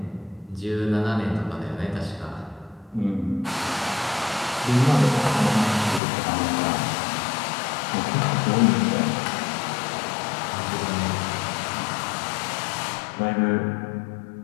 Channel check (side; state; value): right; drops out; at 6.0 s